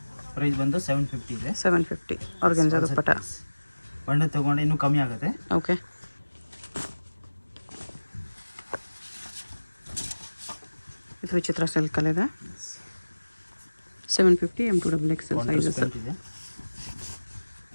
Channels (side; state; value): both; inverted; correlation -1.00